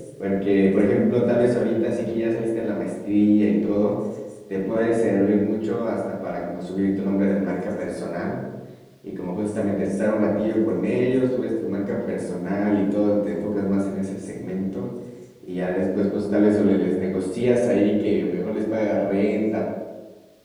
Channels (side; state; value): both; identical; correlation 1.00